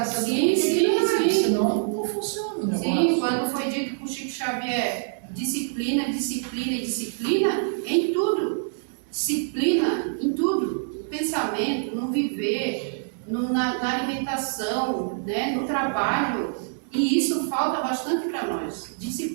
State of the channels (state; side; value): silent; left; 61 dB below the other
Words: essa Sim. senão não funciona o negócio. Sim, quando foi dito por Chico Xavier, disciplina em tudo. Disciplina em tudo. pensamento, no viver, na alimentação, né, no trabalho. E isso falta bastante para nós,